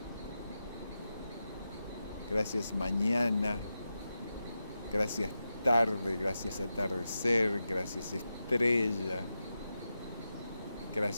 gracias mañana, gracias tarde, gracias atardecer, gracias estrella,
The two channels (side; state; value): both; inverted; correlation -0.90